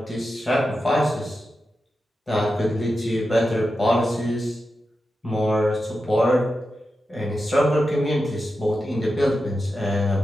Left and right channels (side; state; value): both; normal; correlation 0.90